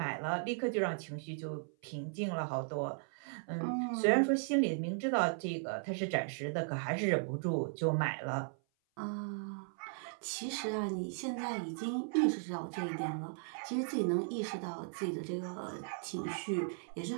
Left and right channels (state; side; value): silent; left; 53 dB below the other